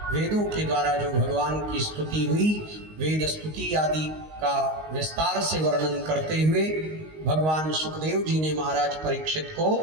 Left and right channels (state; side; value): late; left; 19 ms